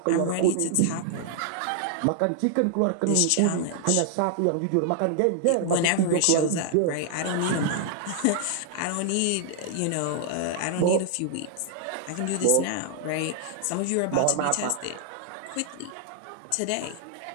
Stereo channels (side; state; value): both; different; correlation 0.00